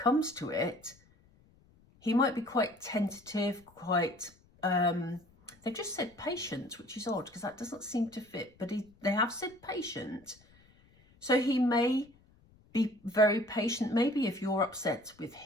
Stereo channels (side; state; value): left; noise; rumble, 29 dB below the sound